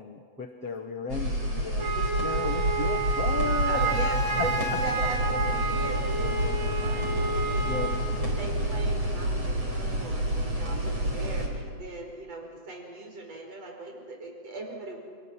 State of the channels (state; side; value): late; left; 7.9 ms